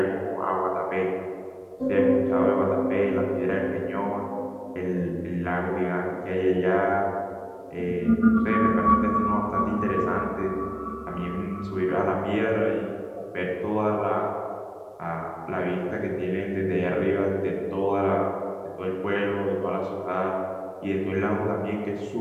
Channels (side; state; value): both; identical; correlation 1.00